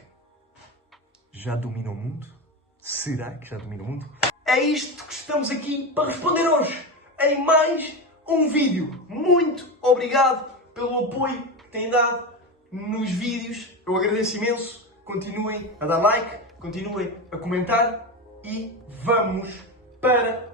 já domina o mundo? Será que já domina o mundo? É isto que estamos aqui para responder hoje, em mais um vídeo. Muito obrigado pelo apoio que têm dado nos vídeos. Eu agradeço imenso. Continuem a dar like, continuem a comentar e vamos para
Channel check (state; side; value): normal; both; correlation 0.19